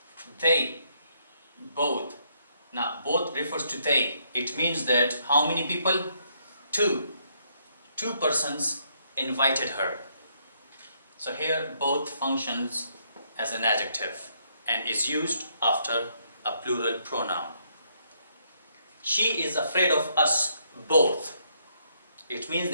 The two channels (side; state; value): both; inverted; correlation -0.72